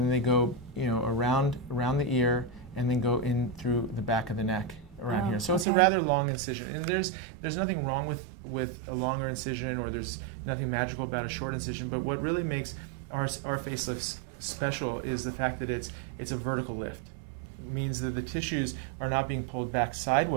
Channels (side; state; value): left; drops out; at 5.7 s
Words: they go around the ear, and then go in through the back of the neck around here. So it's a rather long incision, and there's nothing wrong with a longer incision, or there's nothing magical about a short incision. But what really makes our facelifts special is the fact that it's a vertical lift. It means that the tissues are not being pulled back